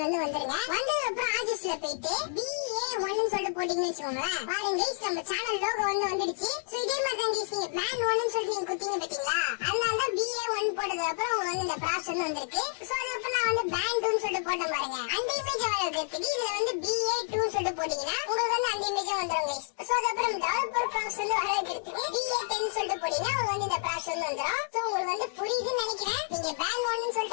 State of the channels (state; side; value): silent; right; digital silence